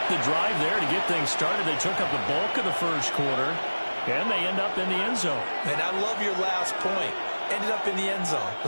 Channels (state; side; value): inverted; both; correlation -1.00